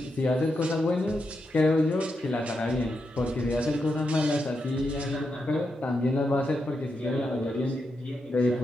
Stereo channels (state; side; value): normal; both; correlation 0.85